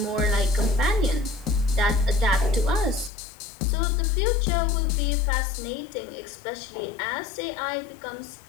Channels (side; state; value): right; drops out; at 3.1 s